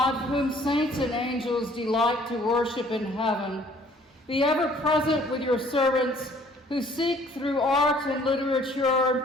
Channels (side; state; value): both; normal; correlation 0.58